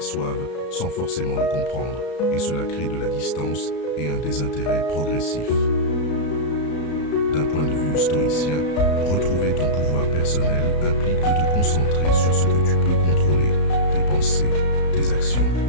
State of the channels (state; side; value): late; right; 34 ms